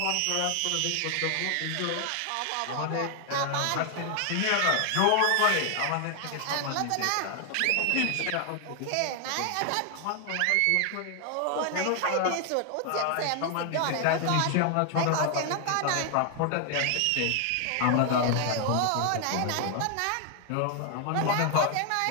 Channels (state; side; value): different; both; correlation 0.00